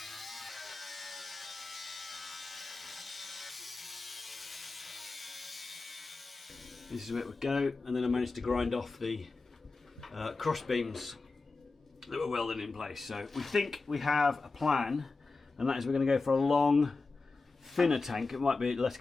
This is where it would go, and then I managed to grind off the cross beams that were welded in place. So we think we have a plan, and that is we're going to go for a long, thinner tank. It might be less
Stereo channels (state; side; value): quieter; right; 3.8 dB